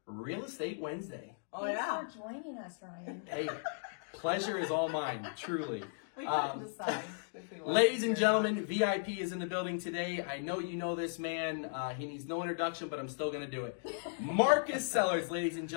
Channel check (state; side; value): silent; right; digital silence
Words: Real Estate Wednesday. Thanks for joining us, Ryan. Hey, pleasure is all mine, truly. We couldn't decide. Ladies and gentlemen, VIP is in the building today. I know you know this man. He needs no introduction, but I'm still going to do it. Marcus Sellards, ladies and